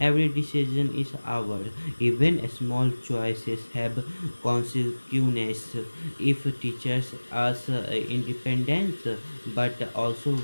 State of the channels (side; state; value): both; inverted; correlation -1.00